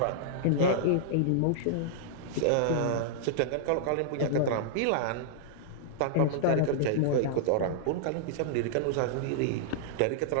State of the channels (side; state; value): both; different; correlation -0.01